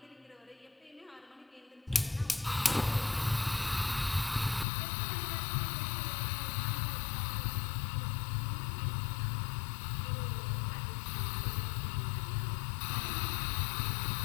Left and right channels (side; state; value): right; drops out; at 4.7 s